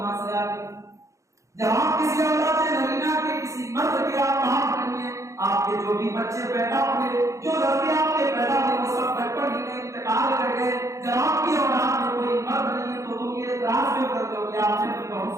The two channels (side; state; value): left; late; 0.15 ms